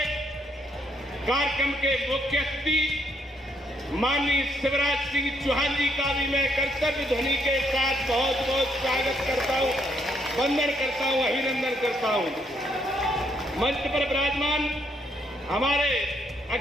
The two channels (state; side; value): normal; both; correlation 0.72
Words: कार्यक्रम के मुख्य अतिथि माननीय शिवराज सिंह चौहान जी का भी मैं कर्तव्य ध्वनि के साथ बहुत बहुत स्वागत करता हूं, वंदन करता हूं, अभिनंदन करता हूं। मंच पर विराजमान हमारे